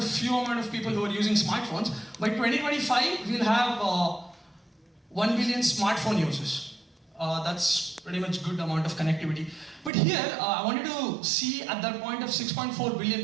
few amount of people who are using smartphones. By 2025, we'll have 1 billion smartphone users. That's pretty much good amount of connectivity. But here, I wanted to see at that point of 6.4 billion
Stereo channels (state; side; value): drops out; left; at 9.9 s